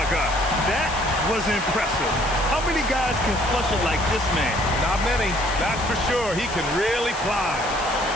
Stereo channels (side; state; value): left; noise; hiss, 13 dB below the sound